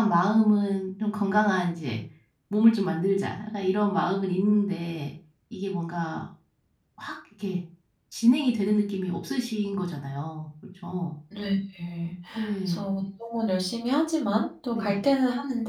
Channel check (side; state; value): both; identical; correlation 1.00